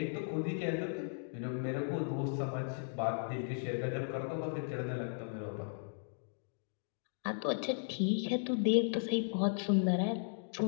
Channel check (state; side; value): silent; right; digital silence